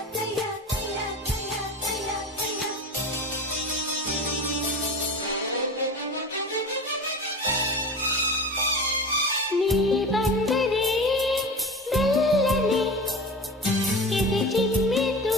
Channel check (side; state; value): both; normal; correlation 0.31